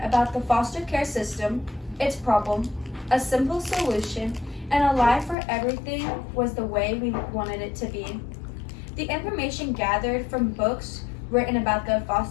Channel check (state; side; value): drops out; right; at 5.4 s